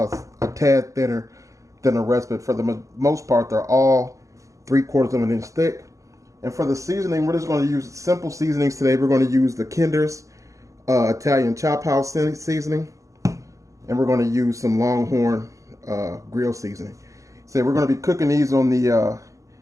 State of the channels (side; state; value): left; late; 0.15 ms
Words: tad thinner than the rest. But for the most part, they're all 3/4 of an inch thick. And for the seasoning, we're just going to use simple seasonings today. We're going to use the Kinder's Italian Chop House seasoning, and we're going to use some Longhorn grill seasoning. So we're going to be cooking these on the